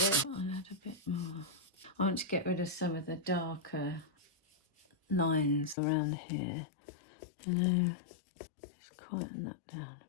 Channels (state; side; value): drops out; right; at 5.8 s